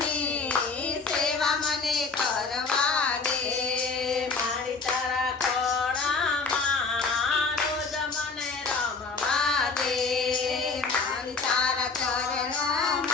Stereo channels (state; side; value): quieter; right; 4.5 dB